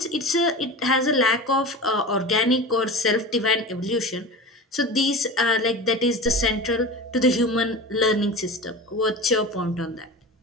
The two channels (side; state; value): both; normal; correlation 0.30